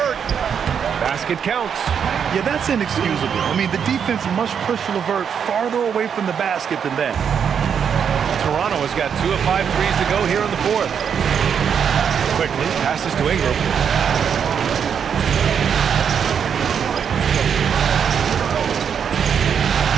Basket counts. Yeah, that's inexcusable. I mean, the defense must push LeVert farther away from the basket than that. Toronto has got 2 of 5 threes to go here in the fourth. Quickly passes to Ingram.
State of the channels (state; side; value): quieter; left; 7.5 dB